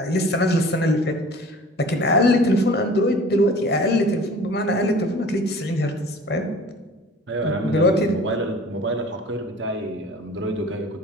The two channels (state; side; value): normal; both; correlation 0.45